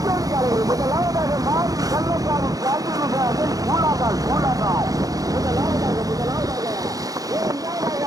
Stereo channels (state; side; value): late; left; 0.17 ms